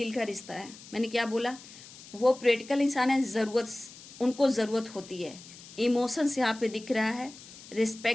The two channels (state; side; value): noise; left; hiss, 18 dB below the sound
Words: का रिश्ता है। मैंने क्या बोला, वो प्रैक्टिकल इंसान है, उनको ज़रूरत होती है। इमोशंस यहाँ पे दिख रहा है,